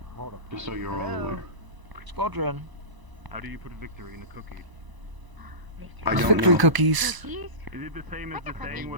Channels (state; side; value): late; left; 1.0 ms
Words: Hold up. Just so you're all aware. Squadron. How do you put victory in a cookie? I don't Victory know. cookies. Is it the same as the saying